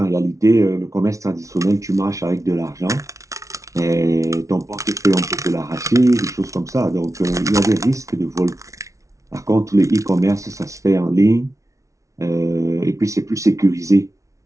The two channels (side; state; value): left; late; 0.15 ms